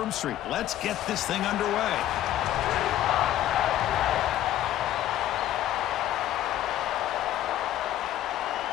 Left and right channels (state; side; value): quieter; right; 12.8 dB